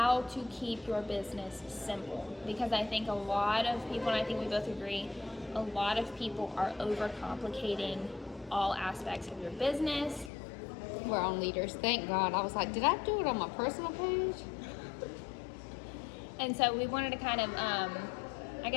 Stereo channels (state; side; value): drops out; right; at 10.3 s